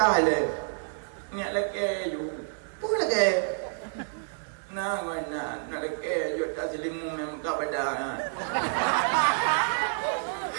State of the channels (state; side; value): silent; left; 58 dB below the other